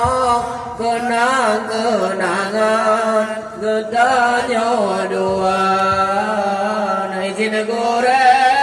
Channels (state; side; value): identical; both; correlation 1.00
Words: kenangan getanya dua izin guru